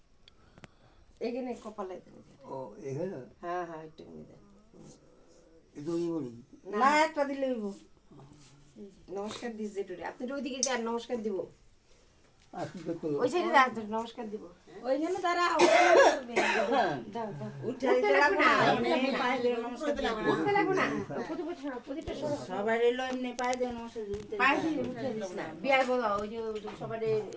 এখানে কপালে দেবে। ও এখানে হ্যাঁ হ্যাঁ একটু দেন। এটা ওই বলি না একটা দিলে হইব নমস্কার দিস যেটুরে আপনি ওইদিকে যান নমস্কার দিব আর কি করতে ওই সাইডে যান নমস্কার দিব ওইখানে তারা দাও দাও উঠে দিতে লাগবে না এমনি পায়ে দিয়ে নমস্কার দিতে লাগবে উঠতে লাগবে না প্রদীপটা সরো প্রদীপটা সরো সবাই এলো এমনি পায়ে দিয়ে নমস্কার দিতে পায়ে দিয়ে উঠে দিস না বিয়ার বলা ওই যে সবার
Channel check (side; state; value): both; identical; correlation 1.00